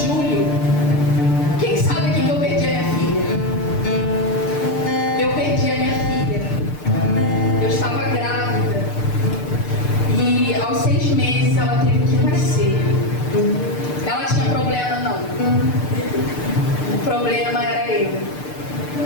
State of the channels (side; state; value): right; late; 6.7 ms